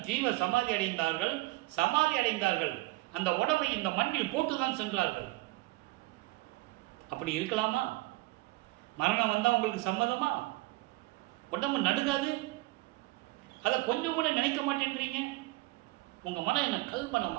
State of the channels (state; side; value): quieter; left; 21.0 dB